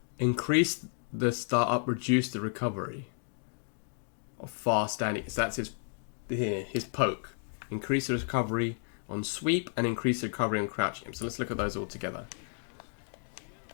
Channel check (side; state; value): right; silent; 56 dB below the other